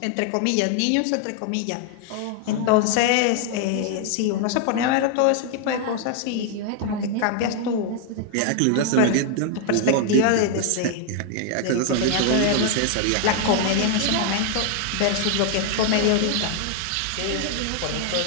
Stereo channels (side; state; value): both; different; correlation 0.00